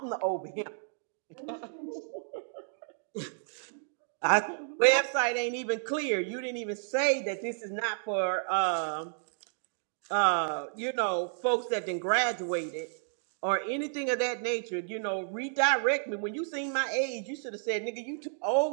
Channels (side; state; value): left; silent; digital silence